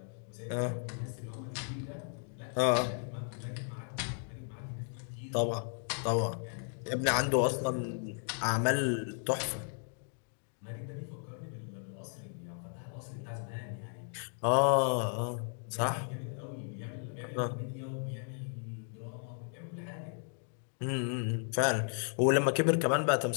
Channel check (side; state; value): right; silent; 54 dB below the other